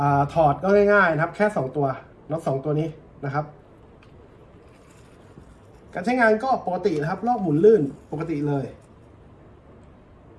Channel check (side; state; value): both; identical; correlation 1.00